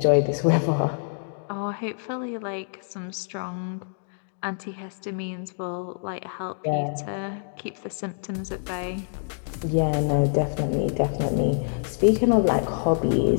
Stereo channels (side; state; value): right; silent; digital silence